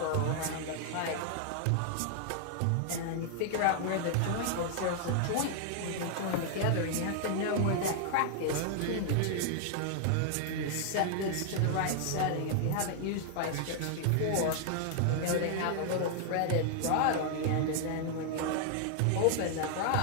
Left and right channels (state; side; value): different; both; correlation 0.00